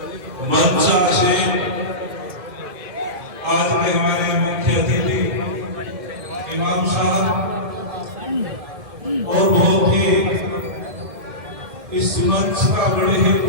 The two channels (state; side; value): late; left; 2.1 ms